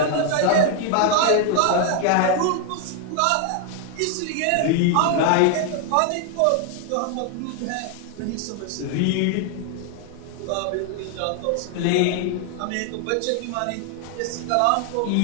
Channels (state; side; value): different; both; correlation 0.00